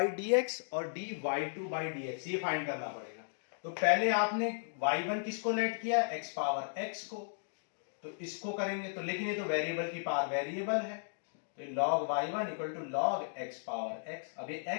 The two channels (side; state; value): right; silent; digital silence